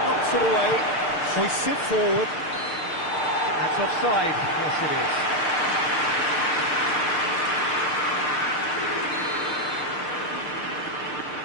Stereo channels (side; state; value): right; late; 6.6 ms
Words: knocks it away, hoists it forward. That's offside, yes it is.